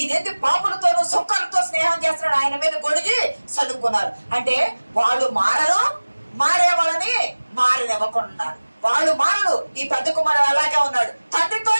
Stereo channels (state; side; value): inverted; both; correlation -1.00